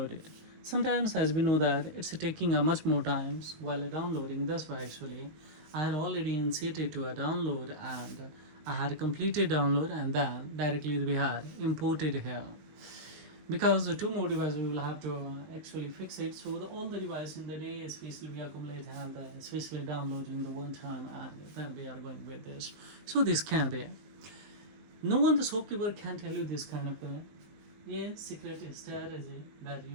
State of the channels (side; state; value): left; late; 19 ms